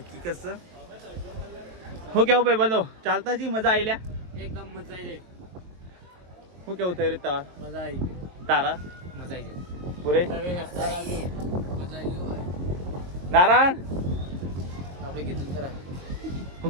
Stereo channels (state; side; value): late; left; 22 ms